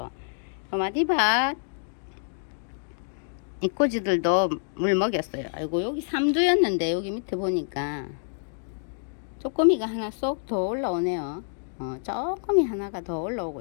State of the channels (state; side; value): silent; right; digital silence